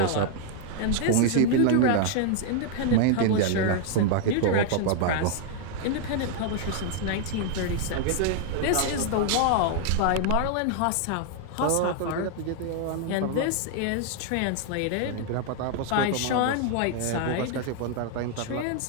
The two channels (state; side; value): different; both; correlation 0.00